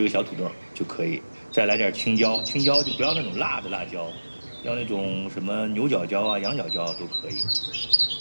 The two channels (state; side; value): inverted; both; correlation -1.00